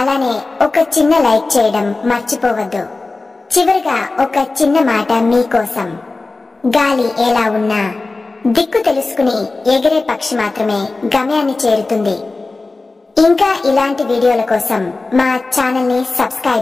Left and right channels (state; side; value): quieter; right; 3.5 dB